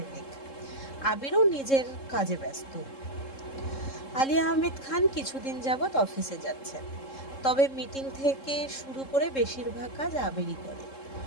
মেঘ। আবিরও নিজের কাজে ব্যস্ত। আলী আহমেদ খান কিছুদিন যাবৎ অফিসে যাচ্ছেন, তবে মিটিং থেকে শুরু করে বেশিরভাগ কাজ আবিরই করে।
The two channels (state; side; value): late; right; 3.7 ms